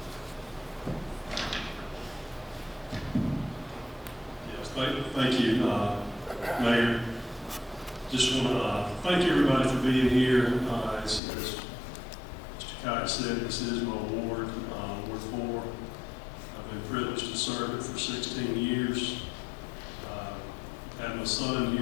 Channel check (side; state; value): right; drops out; at 11.2 s